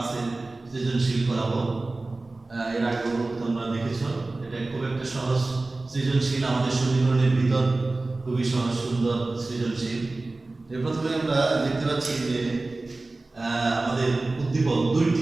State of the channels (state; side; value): quieter; left; 3.2 dB